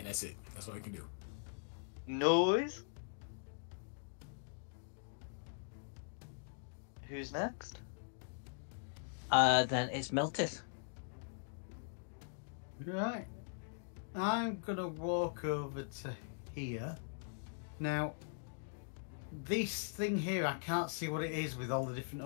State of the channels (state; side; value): silent; right; digital silence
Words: that's it. That's all you can do. Noise. Who's next? Then it's Meltith. Right. I'm gonna walk over to here. Now, this thing here, I can't see what it is with all the different